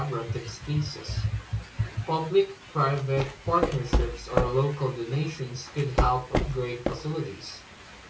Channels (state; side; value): identical; both; correlation 1.00